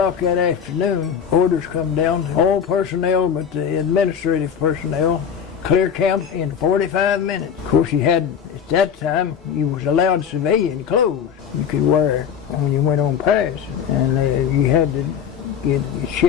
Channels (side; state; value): right; quieter; 7.7 dB